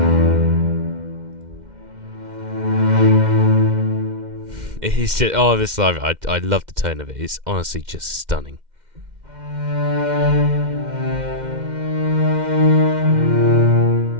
It's just, this live, I love the tone of it. It's honestly just stunning.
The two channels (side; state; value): left; late; 2.1 ms